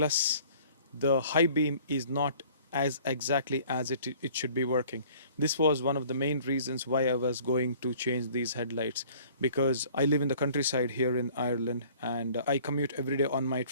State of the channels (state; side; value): inverted; both; correlation -0.52